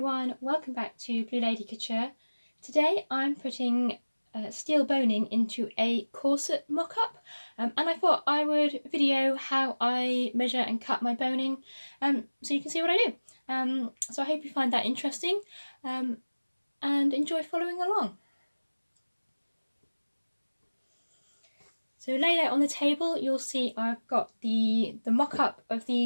welcome back to Blue Lady Couture. Today I'm putting steel boning into a corset mock-up, and I thought I would video how I measure and cut my boning so you can see what I do. So I hope you find that interesting and enjoy following along. So laid out on the table, you'll see I've got the mock-up of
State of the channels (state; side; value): inverted; both; correlation -1.00